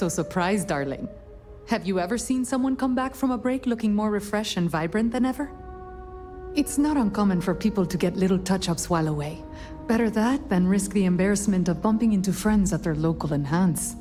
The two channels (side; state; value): both; identical; correlation 1.00